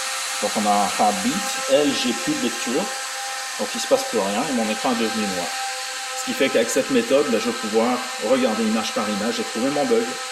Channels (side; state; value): both; identical; correlation 1.00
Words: Donc on a un heartbeat. Elle, j'ai plus de lecture. Donc il ne se passe plus rien et mon écran est devenu noir. Ce qui fait qu'avec cette méthode, je vais pouvoir regarder image par image et trouver mon bug.